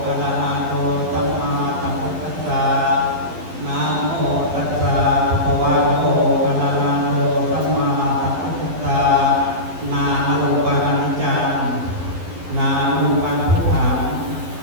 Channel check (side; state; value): left; late; 11 ms